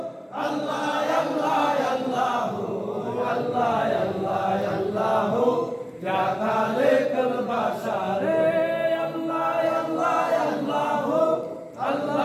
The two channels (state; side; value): identical; both; correlation 1.00